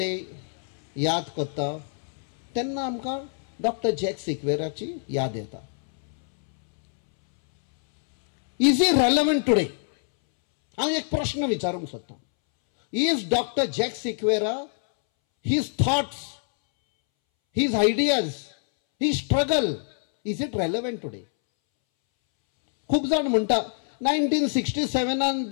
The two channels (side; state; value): right; silent; 62 dB below the other